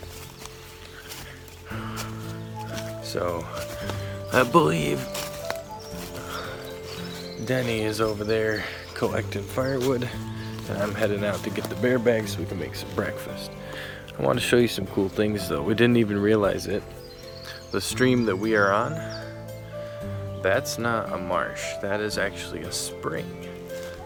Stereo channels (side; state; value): both; identical; correlation 1.00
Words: So I believe Denny is over there collecting firewood, and I'm heading out to get the bear bag so we can make some breakfast. I want to show you some cool things though. We didn't even realize it. The stream that we are on, that's not a marsh. That is actually a spring.